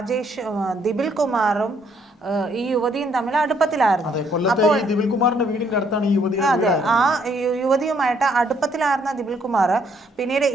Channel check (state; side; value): normal; both; correlation 0.68